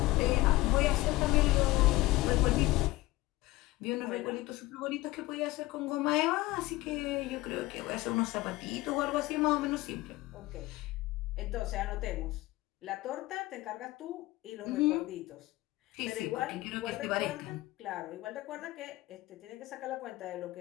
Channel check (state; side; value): quieter; right; 18.8 dB